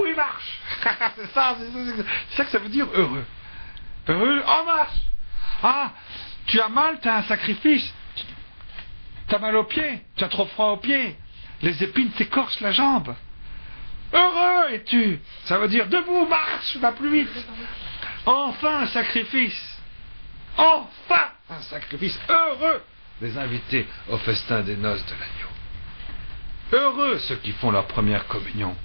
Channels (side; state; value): both; inverted; correlation -1.00